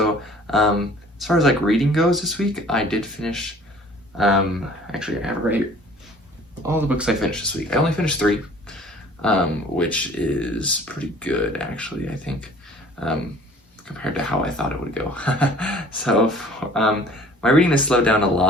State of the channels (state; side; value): normal; both; correlation 0.51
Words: as far as like reading goes this week, I did finish, actually I have right all the books I finished this week. I only finished 3, which is pretty good actually, I think, compared to how I thought it would go. So my reading has slowed down a